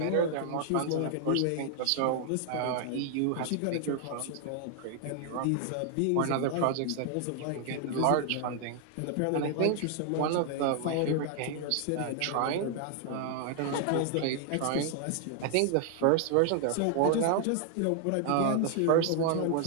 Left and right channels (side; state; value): both; different; correlation 0.00